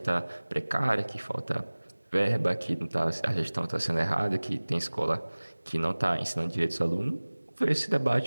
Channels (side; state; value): both; inverted; correlation -1.00